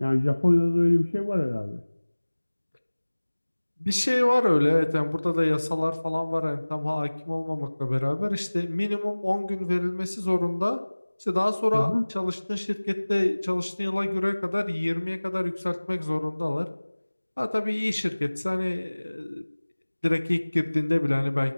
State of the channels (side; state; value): both; inverted; correlation -1.00